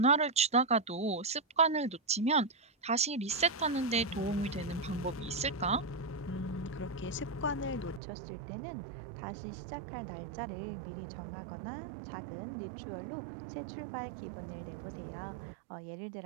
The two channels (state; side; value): drops out; left; at 8.0 s